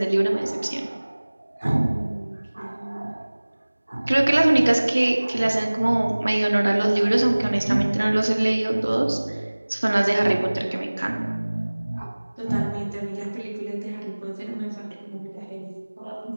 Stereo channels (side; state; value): both; inverted; correlation -1.00